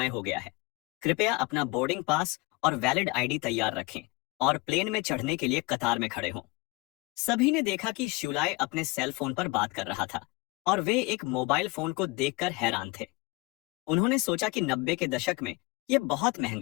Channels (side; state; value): right; quieter; 24.5 dB